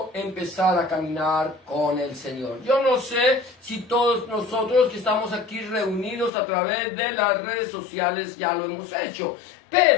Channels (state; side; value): drops out; right; at 6.3 s